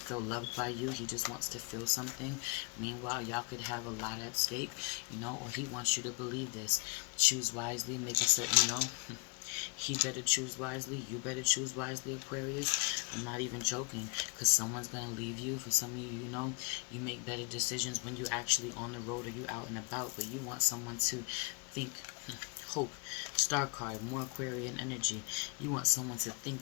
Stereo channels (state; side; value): quieter; right; 31.9 dB